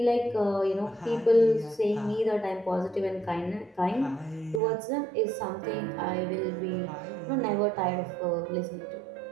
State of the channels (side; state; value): left; drops out; at 4.6 s